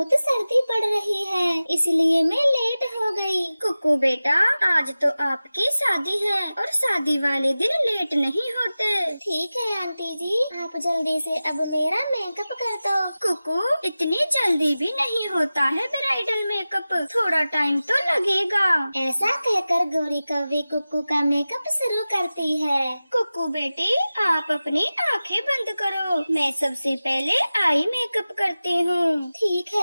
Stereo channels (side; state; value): both; inverted; correlation -0.96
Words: सर्दी पड़ रही है इसलिए मैं लेट हो गई। कुक्कू बेटा, आज तो आपकी शादी है और शादी वाले दिन लेट नहीं होते। ठीक है आंटी जी, आप जल्दी से अब मेरा मेकअप कर दो। कुक्कू, इतनी जल्दी भी नहीं होता है ब्राइडल मेकअप, थोड़ा टाइम तो लगेगा। ऐसा कहकर गौरी कव्वी कुक्कू का मेकअप शुरू करती है। कुक्कू बेटी, आप अपनी आंखें बंद करो, मैं सबसे पहले आई मेकअप करती हूँ। ठीक